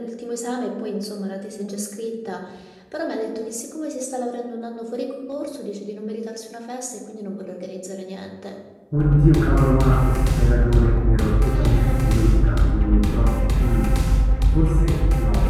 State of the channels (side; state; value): both; identical; correlation 1.00